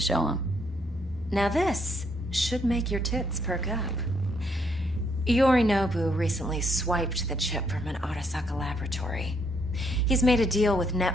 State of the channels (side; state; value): both; normal; correlation 0.73